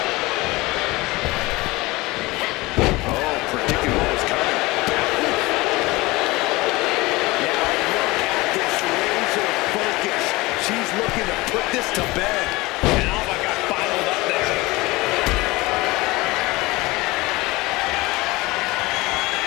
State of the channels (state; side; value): quieter; right; 21.6 dB